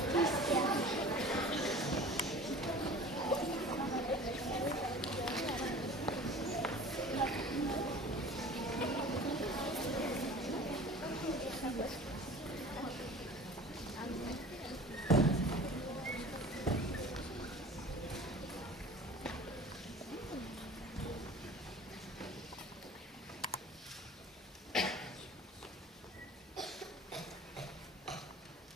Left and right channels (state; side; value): normal; both; correlation 0.41